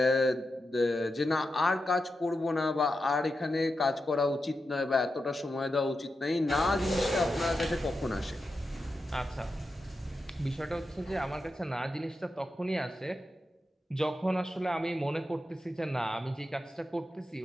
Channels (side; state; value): both; normal; correlation 0.89